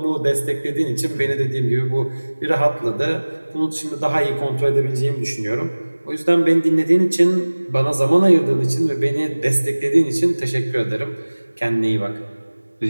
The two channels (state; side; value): inverted; both; correlation -1.00